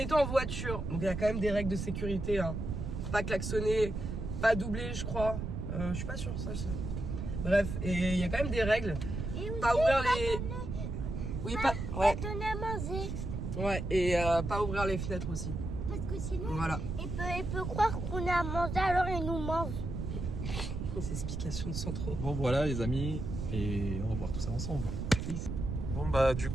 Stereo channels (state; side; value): noise; right; rumble, 4 dB below the sound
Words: en voiture. Donc il y a quand même des règles de sécurité. Hein. Pas klaxonner, pas doubler, je crois. Je suis pas sûre, ça. Bref, et il y a quand même des règles. Pas ouvrir les. Oui, pas. Ouais. Donner à manger. Ouais, et pas ouvrir les fenêtres aussi. Parce que sinon, voilà. il peut croire qu'on a à manger, alors il nous mange. C'est explication de Sandro. Bon voilà les amis, et on va voir tout ça ensemble. Bon bah du